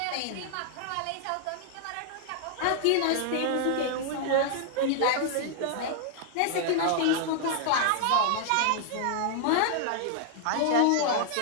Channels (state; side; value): different; both; correlation -0.01